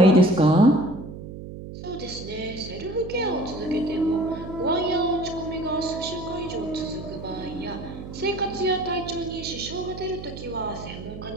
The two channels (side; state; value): right; noise; hum, 11 dB below the sound